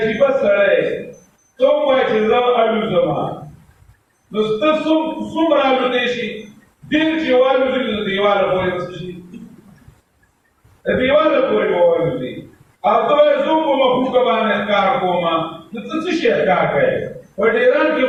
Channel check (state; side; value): identical; both; correlation 1.00